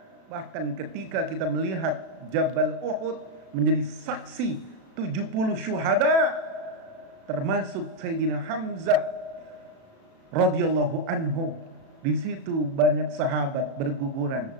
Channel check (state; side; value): late; left; 37 ms